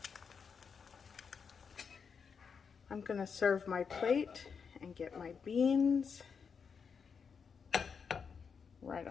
I'm gonna serve my plate and get my beans right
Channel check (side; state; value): right; quieter; 6.1 dB